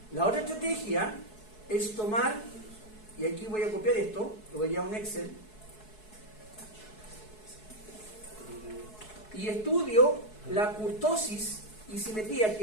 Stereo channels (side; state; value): right; late; 4.7 ms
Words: La otra estrategia es tomar, y aquí voy a copiar esto, lo voy a un Excel, y estudio la kurtosis y simetría,